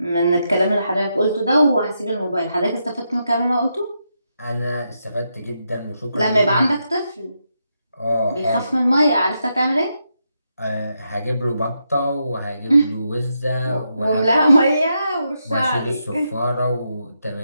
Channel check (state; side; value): inverted; both; correlation -0.83